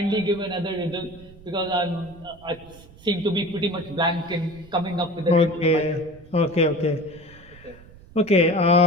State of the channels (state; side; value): noise; right; rumble, 22 dB below the sound